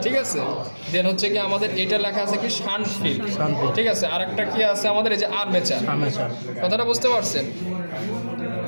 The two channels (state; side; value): inverted; both; correlation -1.00